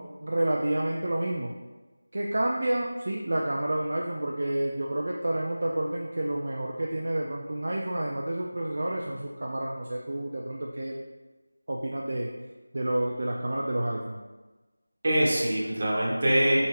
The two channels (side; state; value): both; inverted; correlation -0.98